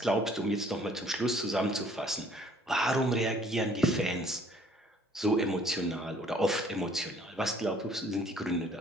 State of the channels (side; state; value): both; normal; correlation 0.58